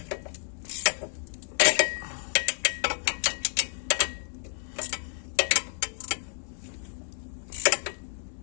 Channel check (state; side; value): silent; right; 58 dB below the other